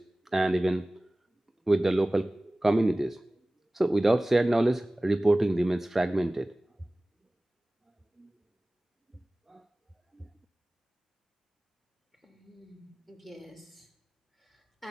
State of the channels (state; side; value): normal; both; correlation 0.98